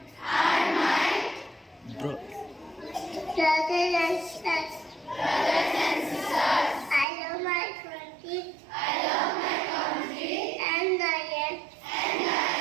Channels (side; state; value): left; drops out; at 7.1 s